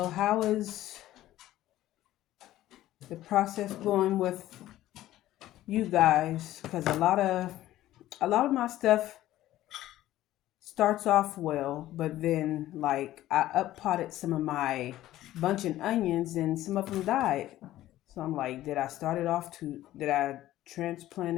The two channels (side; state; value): right; quieter; 14.5 dB